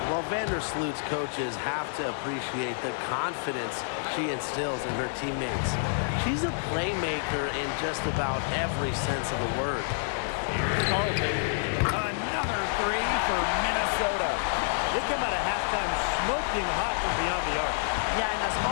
Well, Vandersloot's coaches have to appreciate the confidence she instills in her teammates. She's a playmaker in just about every sense of the word. Here's Carlton. Another three for Minnesota. They came out of halftime smoking hot from beyond the arc. Yeah, and as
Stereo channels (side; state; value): right; silent; digital silence